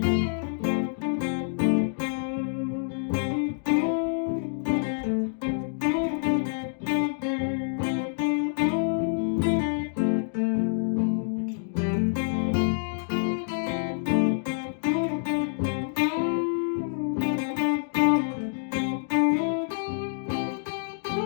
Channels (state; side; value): silent; right; digital silence